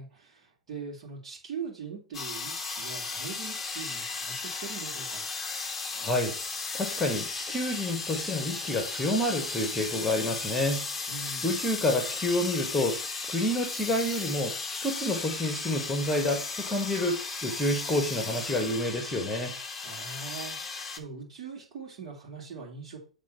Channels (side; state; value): both; normal; correlation 0.38